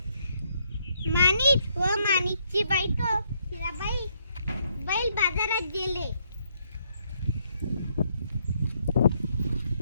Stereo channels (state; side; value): inverted; both; correlation -0.73